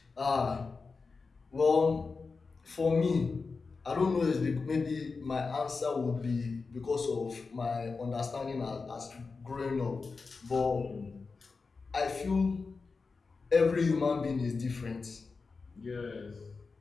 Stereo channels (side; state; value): right; quieter; 4.4 dB